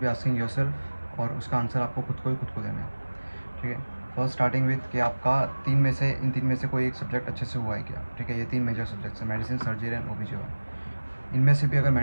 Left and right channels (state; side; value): inverted; both; correlation -1.00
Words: asking yourself और उसका आंसर आपको खुद को देना है. ठीक है, फर्स्ट स्टार्टिंग विथ कि आपका इन तीन में से कोई एक सब्जेक्ट अच्छे से हुआ है क्या. ठीक है, ये तीन मेजर सब्जेक्ट्स हैं, मेडिसिन, सर्जरी एंड ओबीजीवाई. इनमें से भी अगर